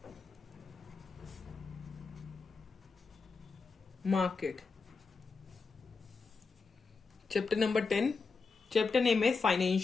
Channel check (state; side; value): quieter; right; 4.6 dB